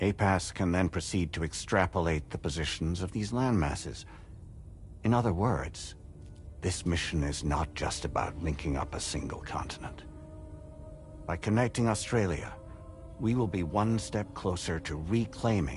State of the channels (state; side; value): identical; both; correlation 1.00